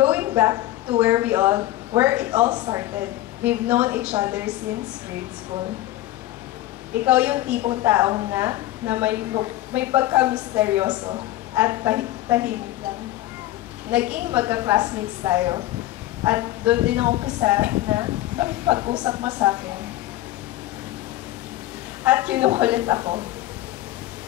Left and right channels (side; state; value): right; quieter; 15.5 dB